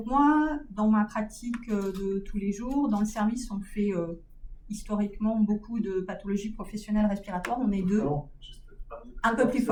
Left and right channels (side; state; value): both; identical; correlation 1.00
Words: moi, dans ma pratique de tous les jours, dans le service, on fait historiquement beaucoup de pathologies professionnelles respiratoires. On est deux. Un peu plus